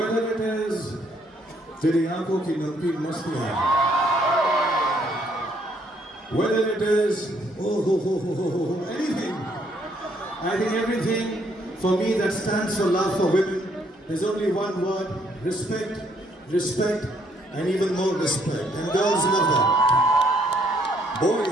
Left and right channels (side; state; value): both; normal; correlation 0.69